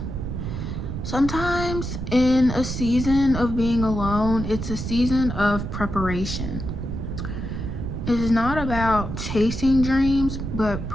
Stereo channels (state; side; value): noise; right; rumble, 5 dB below the sound